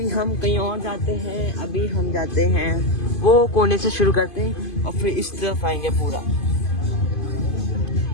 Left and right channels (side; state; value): right; late; 2.5 ms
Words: हम कहीं और जाते हैं, अभी हम जाते हैं वो कोने से शुरू करते हैं और फिर इस तरफ आएंगे पूरा।